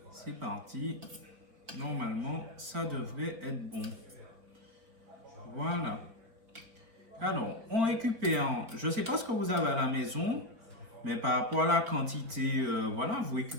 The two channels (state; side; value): late; left; 4.3 ms